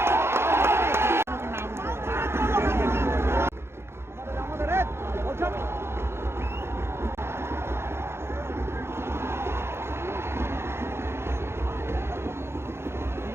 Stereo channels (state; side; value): late; left; 0.12 ms